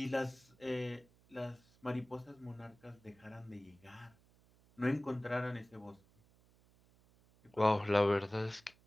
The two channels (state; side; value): noise; right; hum, 29 dB below the sound